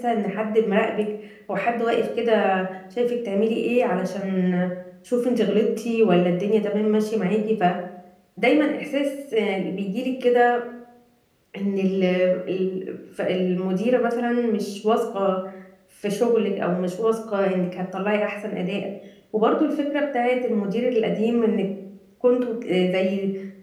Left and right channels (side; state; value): both; identical; correlation 1.00